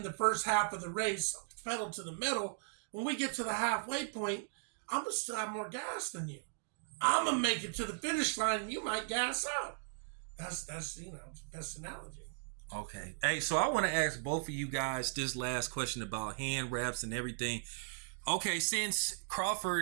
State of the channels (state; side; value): silent; left; digital silence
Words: the first half of the race pedal to the metal, when we get to the halfway point, I'm going to still have more gas than you. I'm going to make it to the finish line and you might gas out. That's best analogy. Okay. Hey, so I want to ask both of you guys this last question about hand wraps and everything. Okay, since